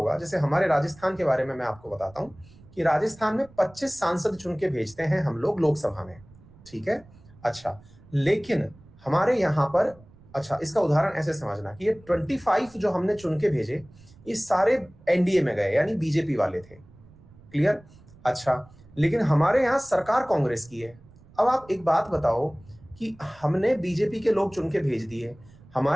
जैसे हमारे राजस्थान के बारे में मैं आपको बताता हूं कि राजस्थान में 25 सांसद चुन के भेजते हैं हम लोग लोकसभा में, ठीक है। अच्छा, लेकिन हमारे यहाँ पर, अच्छा इसका उदाहरण ऐसे समझना कि ये 25 जो हमने चुन के भेजे, ये सारे एनडीए में गए, यानी बीजेपी वाले थे। क्लियर? अच्छा, लेकिन हमारे यहाँ सरकार कांग्रेस की है। अब आप एक बात बताओ कि हमने बीजेपी के लोग चुन के भेज दिए,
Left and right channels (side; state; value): right; noise; rumble, 24 dB below the sound